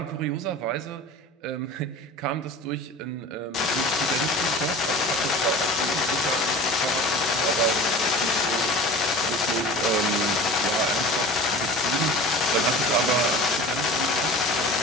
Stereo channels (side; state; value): both; normal; correlation 0.38